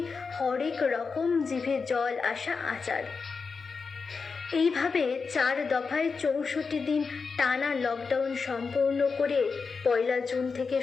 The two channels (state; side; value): quieter; right; 4.9 dB